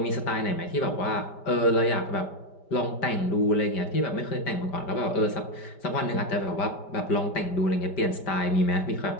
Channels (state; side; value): late; right; 5.1 ms